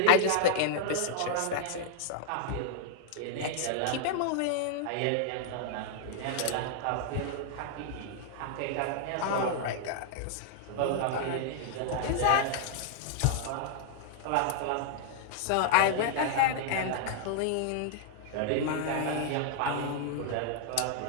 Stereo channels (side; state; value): both; different; correlation -0.01